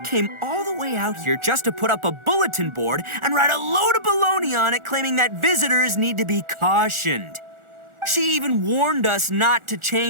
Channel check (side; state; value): left; late; 1.4 ms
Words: all the way out here just to put up a bulletin board and write a load of baloney on it claiming that visitors need to be cautioned. She even warned us not to